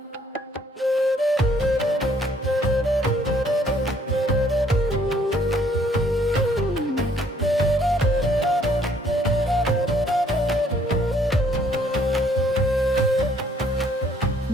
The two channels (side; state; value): both; normal; correlation 0.63